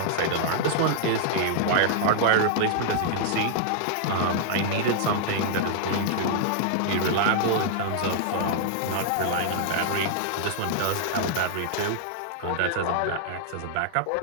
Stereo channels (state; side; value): different; both; correlation -0.01